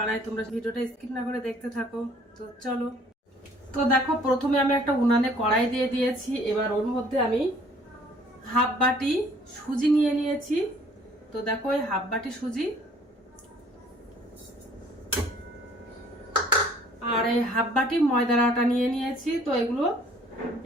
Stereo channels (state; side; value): normal; both; correlation 0.57